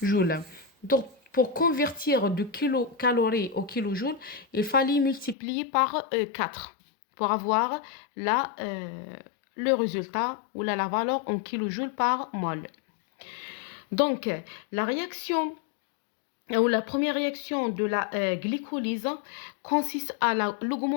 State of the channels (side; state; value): right; drops out; at 5.4 s